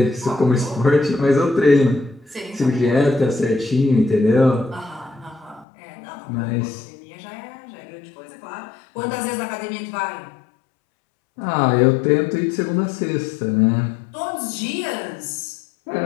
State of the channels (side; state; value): right; drops out; at 5.7 s